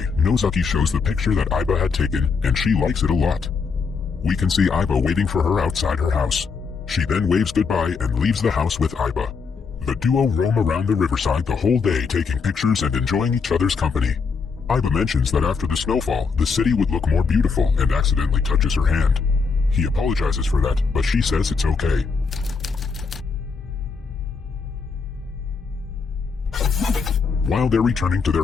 Nozaki shows the picture that Aiba had taken and she likes it a lot. We can see Aiba waiting for her outside her house. She then waves goodbye and leaves the house with Aiba. The duo roam around the riverside the whole day taking pictures and enjoying each other's company. Aiba mentions that after the snowfall, the city would look more beautiful and accidentally touches her hand. He apologizes for that, but she says it's okay. While they're returning to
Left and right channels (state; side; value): quieter; right; 5.2 dB